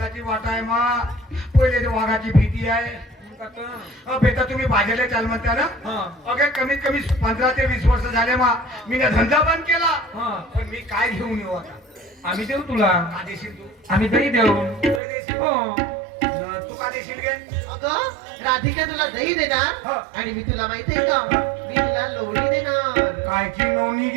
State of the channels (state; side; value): drops out; left; at 15.0 s